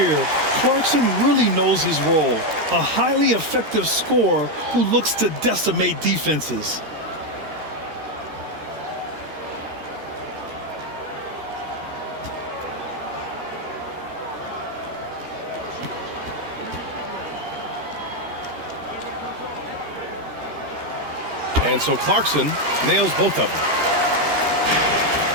Clarkson really knows his role. A highly effective scorer who looks to decimate defenses. And so Clarkson nails both of them.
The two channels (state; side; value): late; left; 13 ms